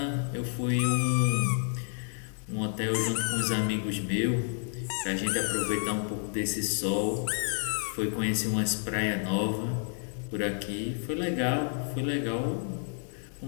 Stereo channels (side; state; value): right; silent; 58 dB below the other